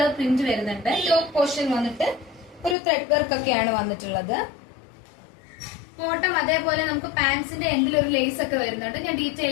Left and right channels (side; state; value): right; drops out; at 2.8 s